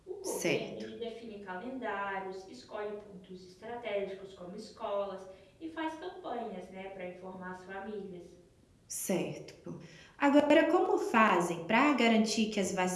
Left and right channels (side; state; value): both; identical; correlation 1.00